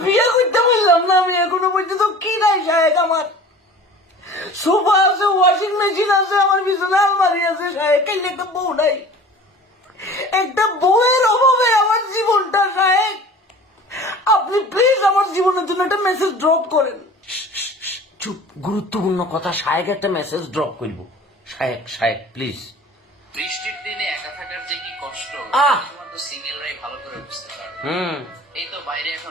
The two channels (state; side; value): normal; both; correlation 0.43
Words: বিয়ে করতে বললাম না আমি, এখনো পর্যন্ত কি নাই সাহেব। আমার সোফা আছে, ওয়াশিং মেশিন আছে, আমার বিছানা আলমারি আছে সাহেব, কেন একটা বউ নাই? একটা বউয়ের অভাবে আমার জীবনটা সাহেব। আপনি প্লিজ আমার জীবনের জন্য একটা মেসেজ ড্রপ করেন। চুপ, গুরুত্বপূর্ণ কথা। শায়েক একটা মেসেজ ড্রপ করবো। শায়েক শায়েক প্লিজ। বৃষ্টির দিনে একা থাকার যে কি কষ্ট শুধুমাত্র সিঙ্গেলরাই ভালো করে বুঝতে পারবে। এই তো বাইরে